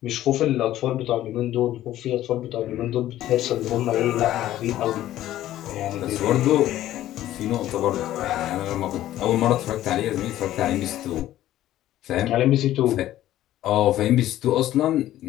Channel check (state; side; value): quieter; right; 13.6 dB